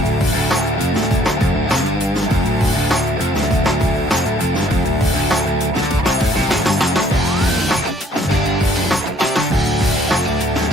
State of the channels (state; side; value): normal; both; correlation 0.61